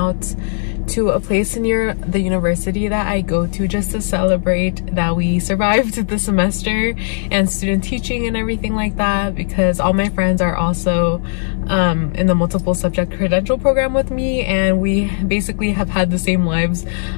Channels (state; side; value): silent; right; 68 dB below the other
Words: to a place near the university that I go to just to celebrate that we survived the semester and student teaching and everything like that, because all my friends are also in the multiple subject credential program with me, and we basically have had the same lives